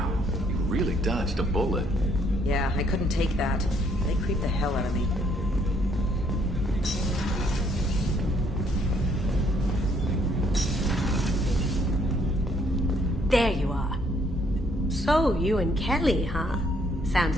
you really dodged a bullet. Yeah, I couldn't take that. They creeped the hell out of me. There you are. So, you and Kelly, huh? Sounds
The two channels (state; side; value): normal; both; correlation 0.67